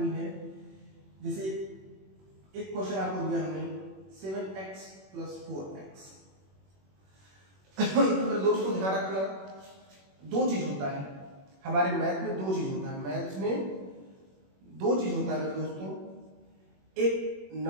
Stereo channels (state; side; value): late; left; 21 ms